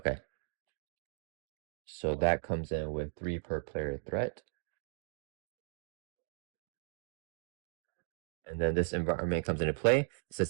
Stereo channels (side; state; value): left; silent; digital silence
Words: So that comes in with 3 per player threat. And then this environment comes into play. It